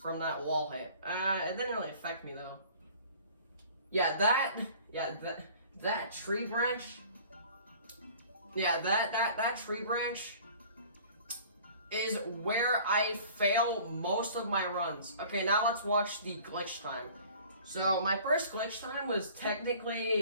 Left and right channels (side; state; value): both; inverted; correlation -0.48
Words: that wall hit. It didn't really affect me though. Yeah, that tree branch. Yeah, that tree branch is where I fail most of my runs. Okay, now let's watch the glitch time. So my first glitch time was